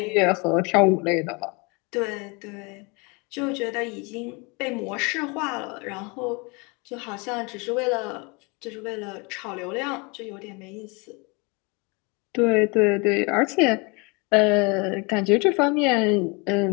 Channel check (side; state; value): right; quieter; 29.7 dB